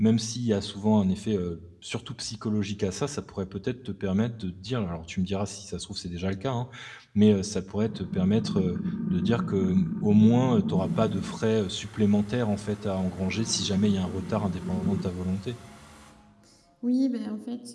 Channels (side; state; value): both; identical; correlation 1.00